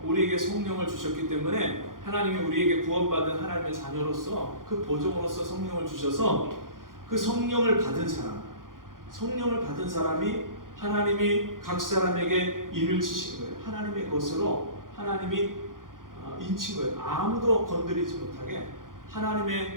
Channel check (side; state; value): left; late; 0.90 ms